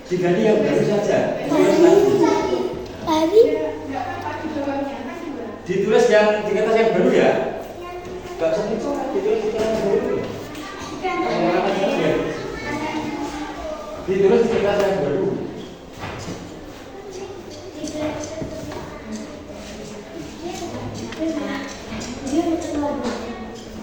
Diganti yang baru saja. Ditulis yang di kertas yang baru ya. Gak usah ditulis di kertas yang baru. Ditulis di kertas yang baru.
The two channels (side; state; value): both; identical; correlation 1.00